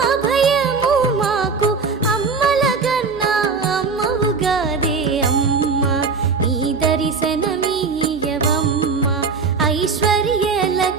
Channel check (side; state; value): left; quieter; 4.8 dB